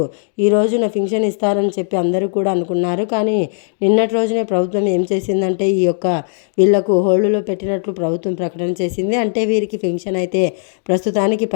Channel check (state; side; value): silent; right; digital silence